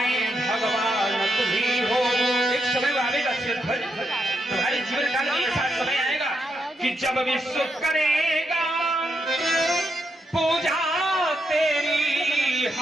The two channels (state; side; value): normal; both; correlation 0.82